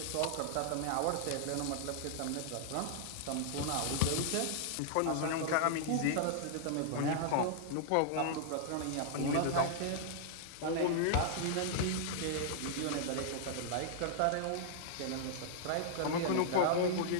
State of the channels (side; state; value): both; different; correlation -0.01